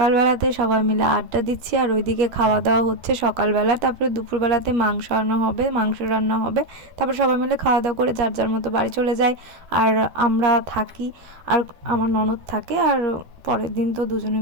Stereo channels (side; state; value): left; late; 12 ms